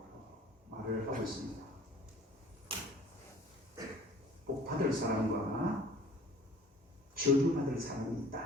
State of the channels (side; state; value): both; normal; correlation 0.50